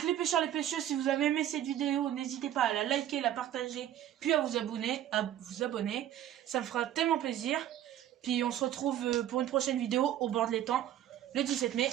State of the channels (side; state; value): left; quieter; 11.6 dB